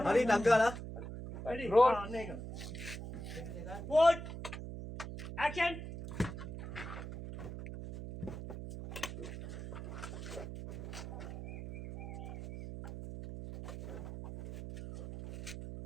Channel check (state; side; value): noise; right; hum, 8 dB below the sound